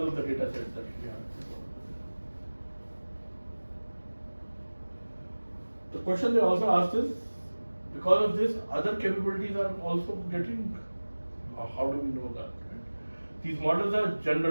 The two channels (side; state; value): both; inverted; correlation -1.00